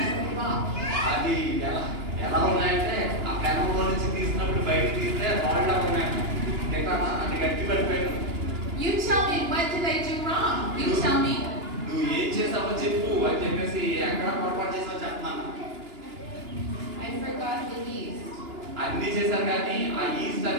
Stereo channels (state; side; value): late; left; 2.9 ms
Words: a rock. అది ఎలా ఉన్నాయంటే ఆ పెనంలో నుంచి తీసినప్పుడు బయటకు తీస్తే రాళ్ళ ఉన్నాయి, అది గట్టి పడిపోయాడు. You tell me, what did I do wrong? You tell me. నువ్వు ఏం చేసావో చెప్పు అని చెప్పేసి ఎక్కడ పొరపాటు చేసావో చెప్పమన్నా. I forgot the yeast. అన్ని చేశారు కానీ ఆ ఈస్ట్